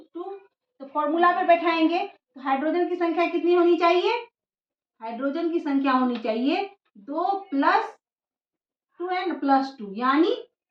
तो फॉर्मूला पे बैठाएंगे तो हाइड्रोजन की संख्या कितनी होनी चाहिए? हाइड्रोजन की संख्या होनी चाहिए 2 प्लस 2n प्लस 2, यानी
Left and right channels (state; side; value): identical; both; correlation 1.00